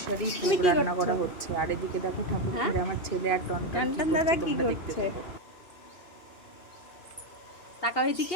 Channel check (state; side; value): late; right; 2.5 ms